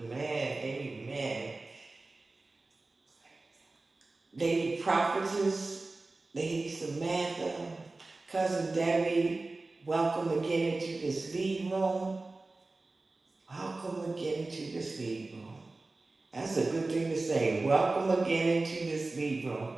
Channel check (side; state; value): left; quieter; 3.3 dB